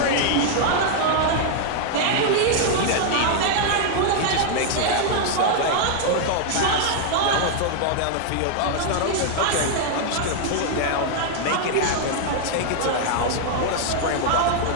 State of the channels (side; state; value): both; different; correlation 0.00